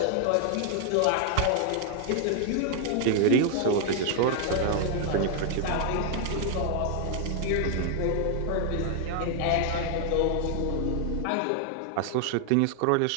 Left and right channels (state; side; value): different; both; correlation 0.00